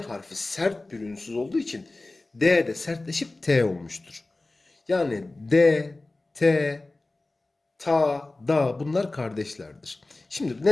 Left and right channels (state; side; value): quieter; right; 3.0 dB